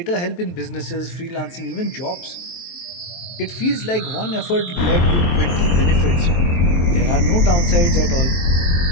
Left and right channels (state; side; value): late; right; 23 ms